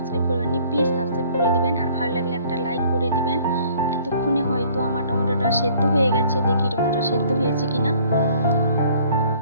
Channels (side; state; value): both; inverted; correlation -0.55